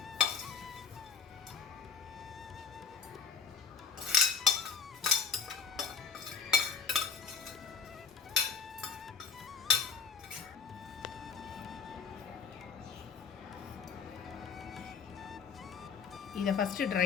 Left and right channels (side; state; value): right; quieter; 6.0 dB